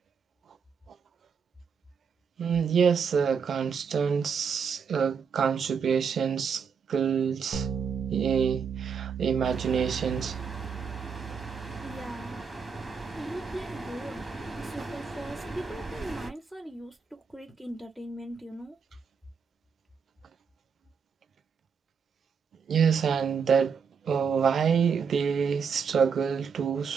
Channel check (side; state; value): left; quieter; 6.3 dB